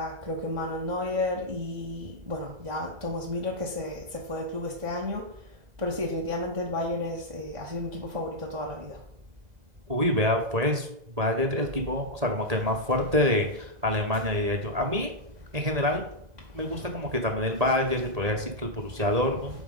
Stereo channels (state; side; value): late; left; 2.0 ms